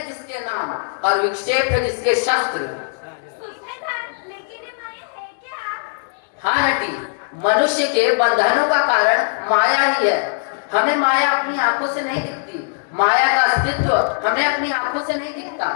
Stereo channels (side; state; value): right; silent; 65 dB below the other